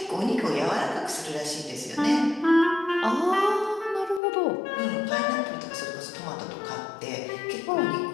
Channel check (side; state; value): right; drops out; at 4.2 s